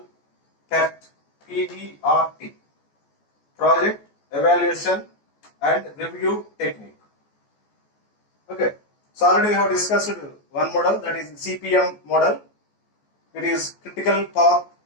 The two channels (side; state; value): right; late; 14 ms